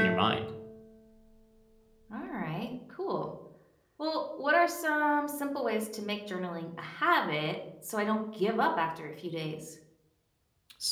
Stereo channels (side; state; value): both; identical; correlation 1.00